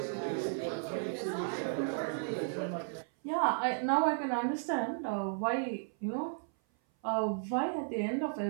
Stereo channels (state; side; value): silent; left; 55 dB below the other